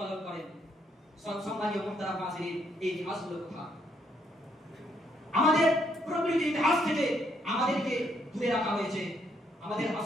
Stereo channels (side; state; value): both; normal; correlation 0.72